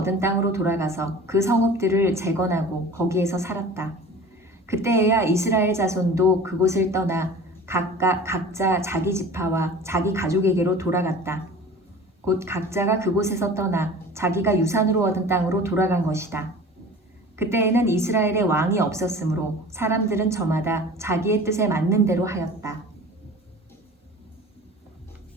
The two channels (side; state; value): both; normal; correlation 0.40